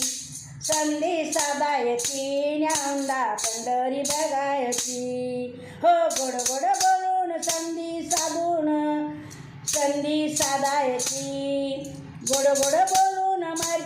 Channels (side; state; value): both; identical; correlation 1.00